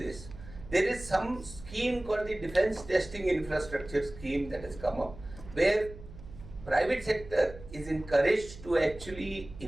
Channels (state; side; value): noise; right; hum, 16 dB below the sound